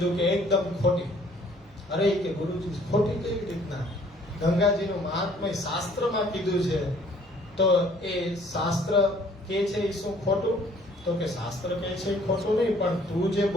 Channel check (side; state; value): both; normal; correlation 0.58